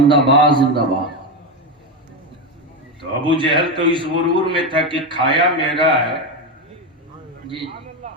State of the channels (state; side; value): normal; both; correlation 0.12